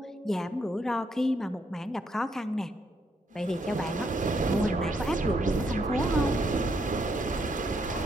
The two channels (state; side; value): normal; both; correlation 0.75